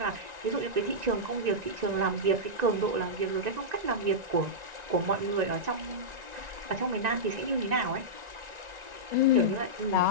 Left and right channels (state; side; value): late; left; 1.9 ms